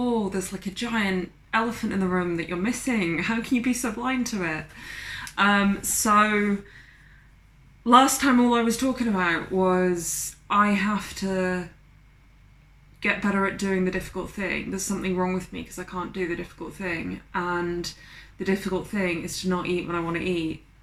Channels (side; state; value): both; identical; correlation 1.00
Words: there's like a giant elephant in the room that you're missing. How can you be so blind to it? So last time all I was talking about was I have to get better at doing the difficult thing. There's something wrong with me because I can't do the difficult thing. And the difficult thing is to not eat when I want to eat